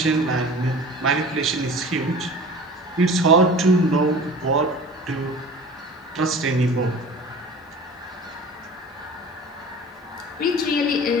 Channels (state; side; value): normal; both; correlation 0.40